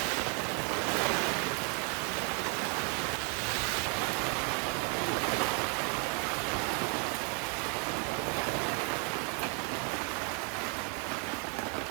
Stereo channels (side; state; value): left; quieter; 36.1 dB